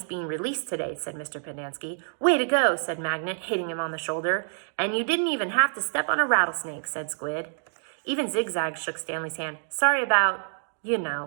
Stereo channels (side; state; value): left; silent; digital silence